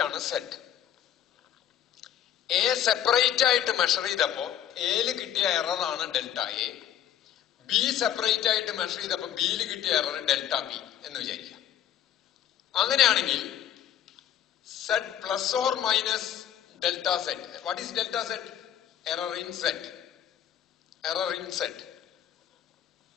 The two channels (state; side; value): quieter; right; 10.4 dB